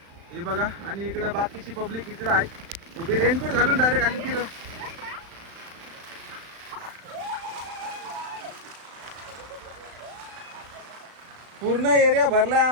हे बघा आणि इकडे बाकीची पब्लिक इकडे आहे उभी रेनकोट घालून डायरेक्ट आली तिथं. पूर्ण एरिया भरलाय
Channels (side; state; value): left; late; 35 ms